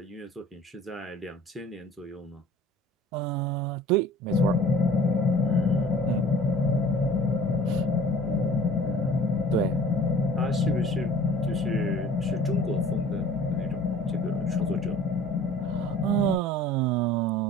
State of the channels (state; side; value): normal; both; correlation 0.48